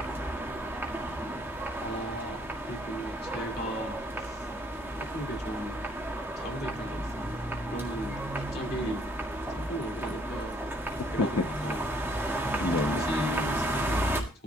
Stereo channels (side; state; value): both; normal; correlation 0.64